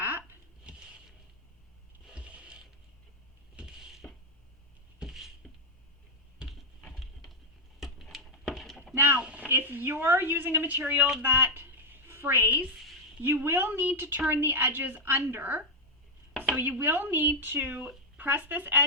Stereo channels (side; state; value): both; normal; correlation -0.01